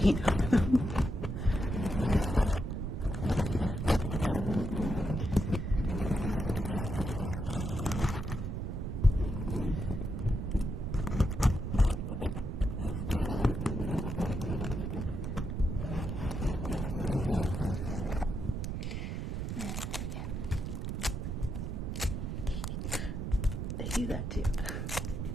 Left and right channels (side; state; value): right; noise; rumble, 3 dB below the sound